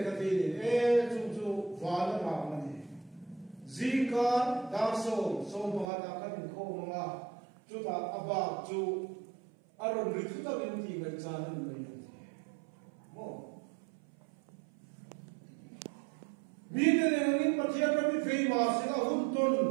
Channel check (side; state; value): left; drops out; at 5.9 s